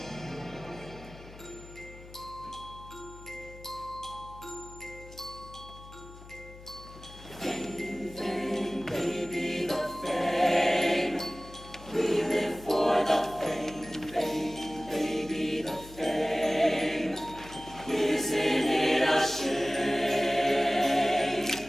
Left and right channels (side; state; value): left; noise; hum, 18 dB below the sound